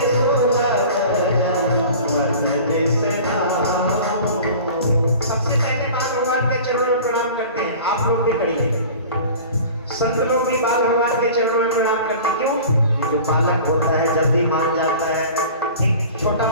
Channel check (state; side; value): inverted; both; correlation -0.41